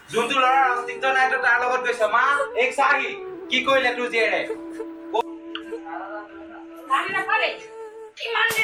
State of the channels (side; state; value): both; identical; correlation 1.00